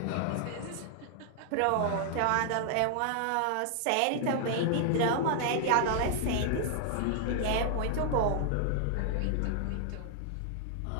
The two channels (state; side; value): different; both; correlation 0.00